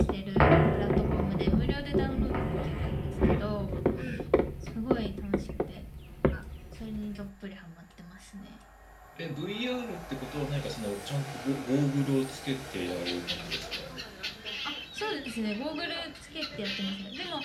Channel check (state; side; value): identical; both; correlation 1.00